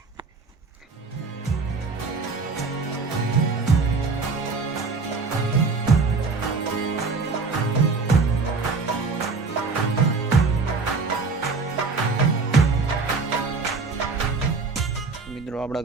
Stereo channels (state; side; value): quieter; left; 4.3 dB